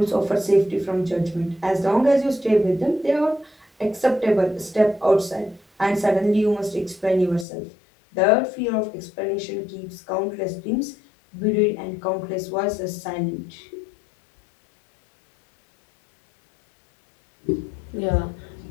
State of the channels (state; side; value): drops out; right; at 7.5 s